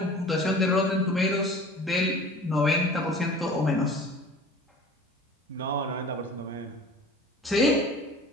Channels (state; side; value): normal; both; correlation 0.43